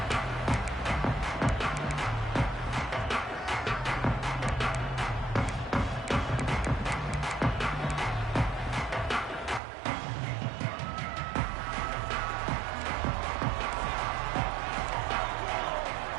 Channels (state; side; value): drops out; left; at 9.6 s